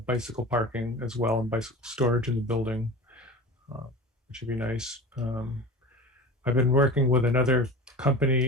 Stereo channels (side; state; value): both; normal; correlation 0.33